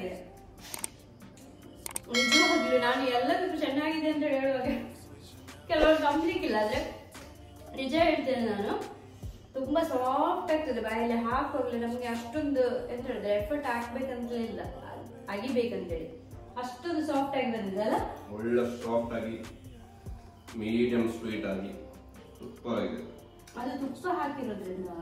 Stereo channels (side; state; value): both; identical; correlation 1.00